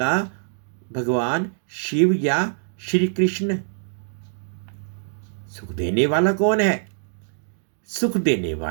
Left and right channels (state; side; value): silent; left; digital silence